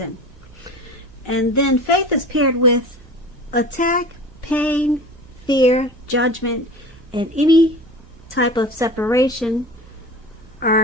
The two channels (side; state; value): right; noise; hum, 23 dB below the sound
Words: And then faith is paired with attack, pain, fear, judgment, and any type of separation